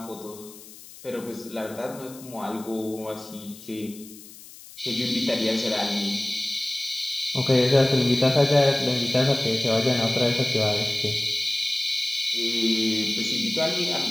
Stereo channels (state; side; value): noise; left; hiss, 18 dB below the sound